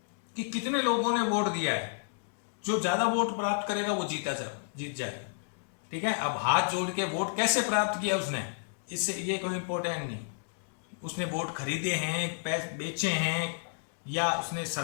कि कितने लोगों ने वोट दिया है। जो ज्यादा वोट प्राप्त करेगा वो जीत जाएगा। ठीक है, अब हाथ जोड़ के वोट कैसे प्राप्त किया उसने, इससे ये कोई इंपॉर्टेंट नहीं। उसने वोट खरीदे हैं, पैसे बेचे हैं, या उसने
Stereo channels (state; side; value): silent; right; digital silence